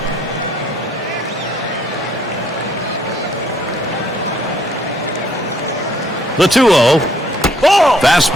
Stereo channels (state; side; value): normal; both; correlation 0.65